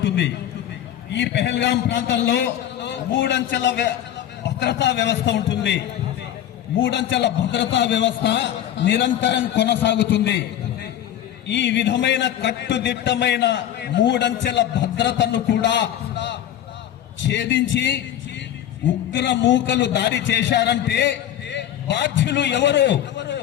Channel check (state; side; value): quieter; right; 11.3 dB